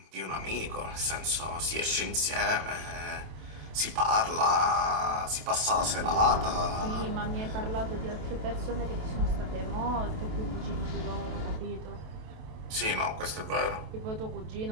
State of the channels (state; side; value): late; left; 27 ms